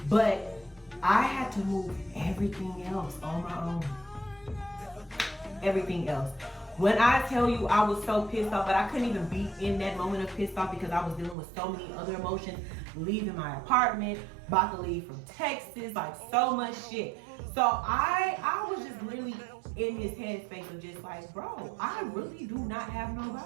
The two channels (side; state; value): left; drops out; at 11.4 s